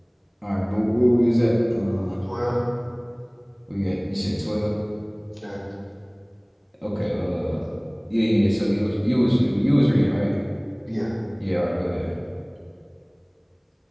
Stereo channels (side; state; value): both; identical; correlation 1.00